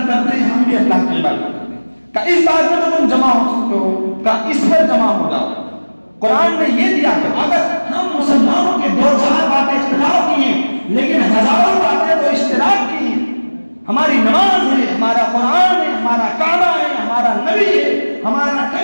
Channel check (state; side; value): inverted; both; correlation -1.00